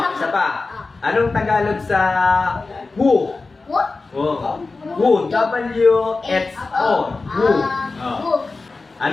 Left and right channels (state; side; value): quieter; right; 3.8 dB